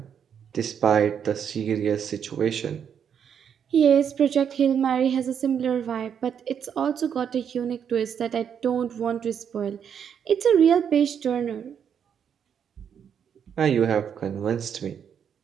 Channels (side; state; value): left; quieter; 8.0 dB